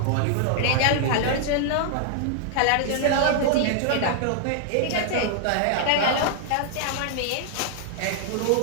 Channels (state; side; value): different; both; correlation -0.01